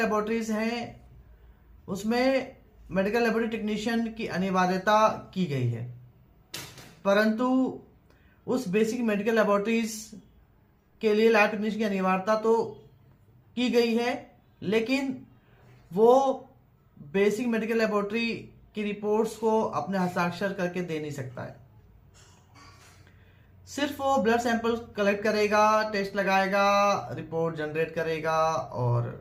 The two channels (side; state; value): both; identical; correlation 1.00